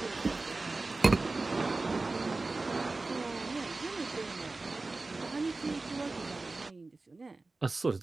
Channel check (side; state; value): left; quieter; 3.5 dB